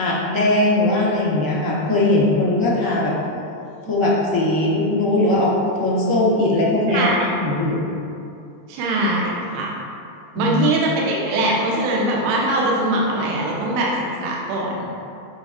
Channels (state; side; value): late; left; 20 ms